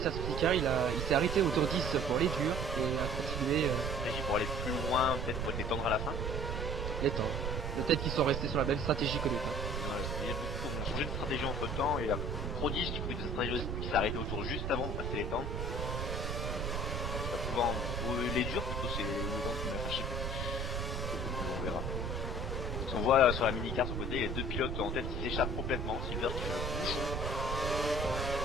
il s'est arrêté au tour 10 pour les durs et a continué. Pour aller plus loin, peut-être pour les tendre à la fin. Les tendre. Peut-être qu'ils sont restés sur la même stratégie que les temps. Il y a beaucoup qui ont changé de stratégie entre temps et la Prodige qui prit une stratégie qui s'est arrêté au tour juste avant de passer les tendres. Souvent, les durs plutôt, c'est les tendres qui m'a fâché. On verra. On voit sur la mini-car sur le côté, les deux pilotes en tête qui s'échappent complètement. Silver qui fait le bouchon.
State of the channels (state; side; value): noise; right; rumble, 2 dB below the sound